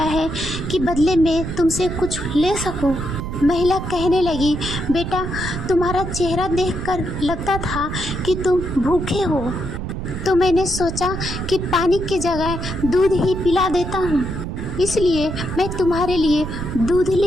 है कि बदले में तुमसे कुछ ले सकूं। महिला कहने लगी, बेटा तुम्हारा चेहरा देखकर लगता था कि तुम भूखे हो, तो मैंने सोचा कि पानी की जगह दूध ही पिला देता हूँ, इसलिए मैं तुम्हारे लिए दूध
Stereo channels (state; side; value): noise; right; rumble, 6 dB below the sound